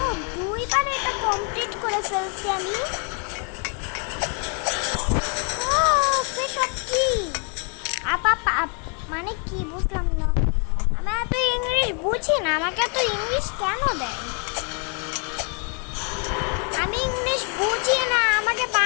দুইবার এটা কমপ্লিট করে ফেলছি আমি। মানে কি বুঝলাম না, আমি এত ইংলিশ বুঝি না, আমাকে এত ইংলিশ কেন দেয়? আমি ইংলিশ বুঝি না, আমাকে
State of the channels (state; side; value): quieter; right; 39.3 dB